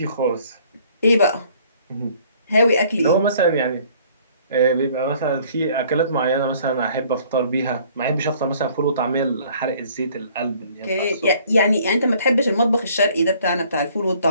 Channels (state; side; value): inverted; both; correlation -0.58